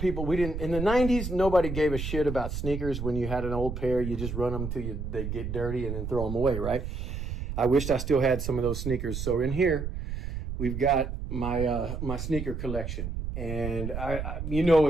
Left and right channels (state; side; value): noise; right; rumble, 5 dB below the sound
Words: We didn't, in the 90s, nobody gave a shit about sneakers. When you had an old pair, you just run them till they get dirty and then throw them away, right? I wished I still had some of those sneakers. So in here, we've got my sneaker collection. And you know